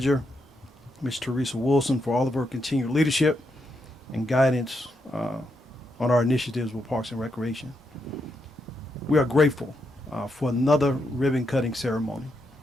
Ms. Teresa Wilson, for all of her continued leadership and guidance on our initiatives with Parks and Recreation. We are grateful for another ribbon cutting ceremony.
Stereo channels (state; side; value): normal; both; correlation 0.81